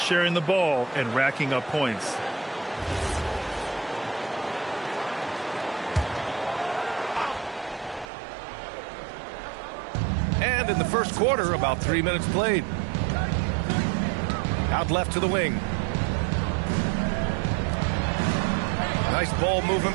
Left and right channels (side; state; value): left; drops out; at 8.1 s